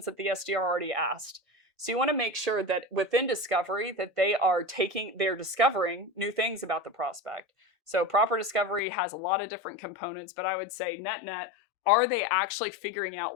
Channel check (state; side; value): drops out; right; at 8.8 s